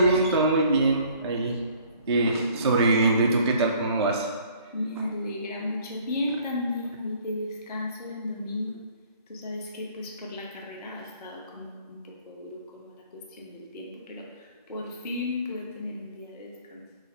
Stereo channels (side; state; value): both; inverted; correlation -0.56